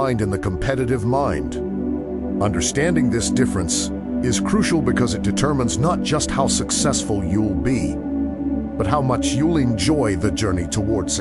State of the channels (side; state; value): both; identical; correlation 1.00